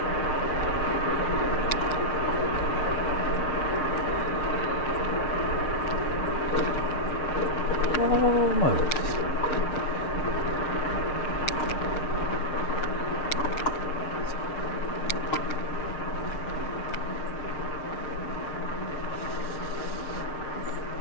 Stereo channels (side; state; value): right; late; 6.4 ms